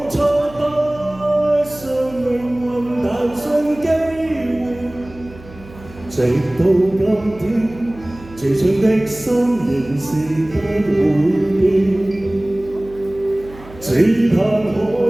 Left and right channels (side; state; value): right; noise; hum, 19 dB below the sound